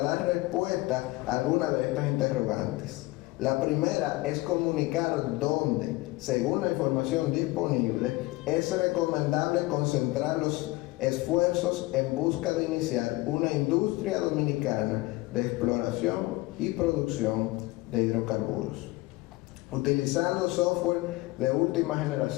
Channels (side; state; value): right; quieter; 20.7 dB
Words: dar respuesta a algunas de estas interrogantes. La primera es comunicar dónde, según la información disponible, es recomendable concentrar los esfuerzos en busca de iniciar una industria dominicana de exploración y producción de hidrocarburos. Utilizando software de última